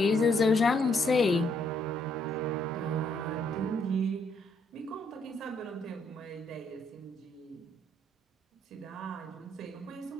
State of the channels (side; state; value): both; normal; correlation 0.71